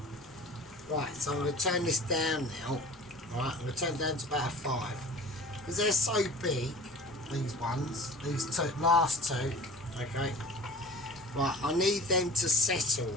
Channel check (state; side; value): normal; both; correlation 0.41